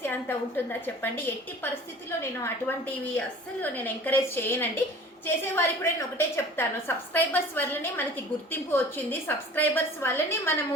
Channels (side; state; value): both; normal; correlation 0.44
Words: అంత ఉంటుందా చెప్పండి? ఎట్టి పరిస్థితుల్లో నేను అటువంటివి అస్సలు నేను ఎంకరేజ్ చేయనండి. చేసేవారికి కూడా నేను ఒకటే చెప్తాను, సబ్స్క్రైబర్స్ వల్లనే మనకి గుర్తింపు వచ్చింది, సబ్స్క్రైబర్స్ వల్లనే